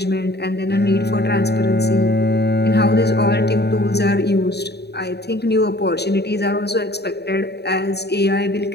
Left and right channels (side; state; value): right; late; 0.48 ms